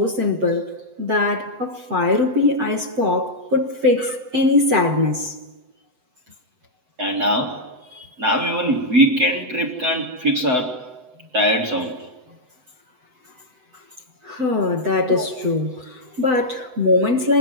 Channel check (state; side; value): late; left; 7.9 ms